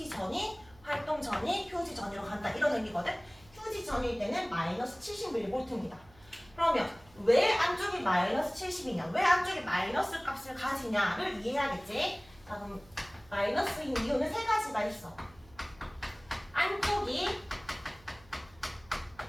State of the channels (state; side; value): noise; right; hum, 26 dB below the sound